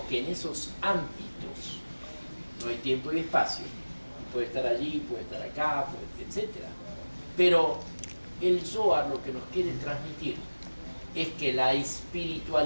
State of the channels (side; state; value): both; inverted; correlation -1.00